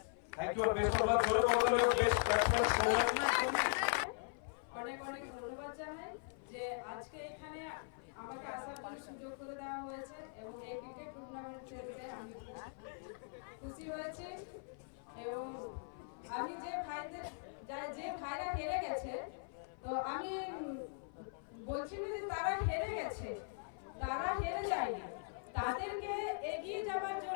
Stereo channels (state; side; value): silent; right; 51 dB below the other